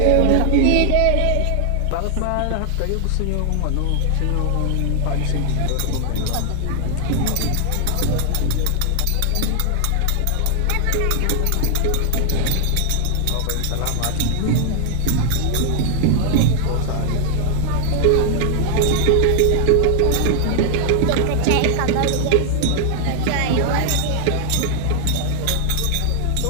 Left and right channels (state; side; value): different; both; correlation 0.00